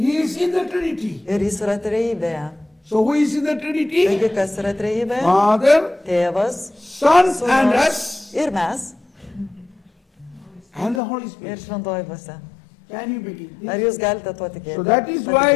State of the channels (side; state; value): right; drops out; at 11.0 s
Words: is in the Trinity. Ir jis yra trejybėje. So who is in the Trinity? Taigi kas yra trejybė? Father, Tėvas, Son and Sūnus us ir mes and the Holy ir Spirit. Šventoji Dvasia. Can you believe Ar this? jūs galite tuo tikėti? So that is why